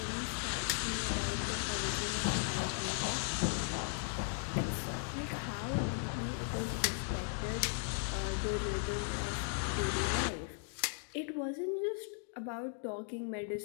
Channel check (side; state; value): right; silent; 53 dB below the other